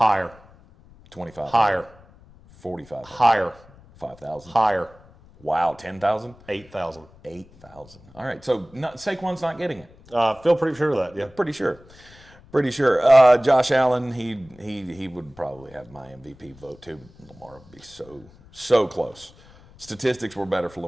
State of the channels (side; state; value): left; noise; rumble, 25 dB below the sound